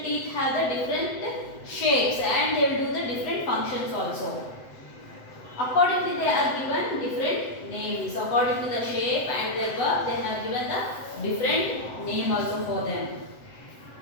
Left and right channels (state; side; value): late; right; 7.9 ms